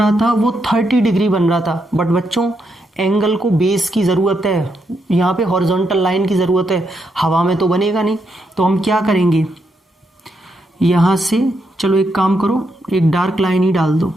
था वो 30 डिग्री बन रहा था, बट बच्चों एंगल को बेस की ज़रूरत है, यहाँ पे हॉरिजॉन्टल लाइन की ज़रूरत है, हवा में तो बनेगा नहीं। तो हम क्या करेंगे, यहाँ से चलो एक काम करो, एक डार्क लाइन ही डाल दो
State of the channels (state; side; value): normal; both; correlation 0.80